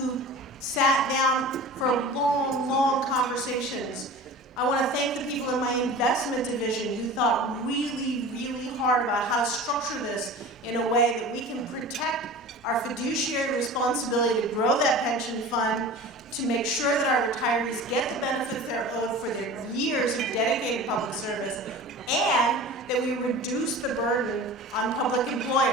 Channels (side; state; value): both; normal; correlation 0.37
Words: sat down for long, long conversations. I want to thank the people in my investment division who thought really, really hard about how to structure this in a way that we can protect our fiduciary responsibility to grow that pension fund, to make sure that our retirees get the benefits they're owed for their years of dedicated public service, and that we reduce the burden on public